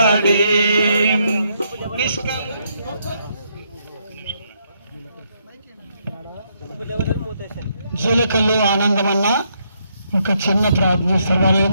జీలకల్లు ఆనందమన్న ఒక చిన్న ప్రార్థన చేస్తారు వాళ్ళు,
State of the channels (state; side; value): inverted; both; correlation -0.75